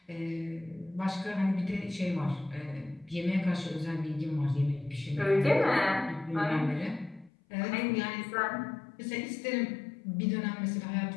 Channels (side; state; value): right; drops out; at 7.3 s